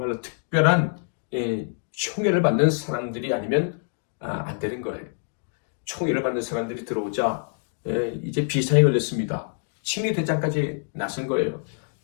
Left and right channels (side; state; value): right; silent; digital silence